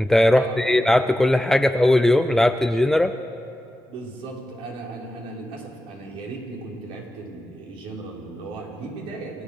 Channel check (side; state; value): both; normal; correlation 0.92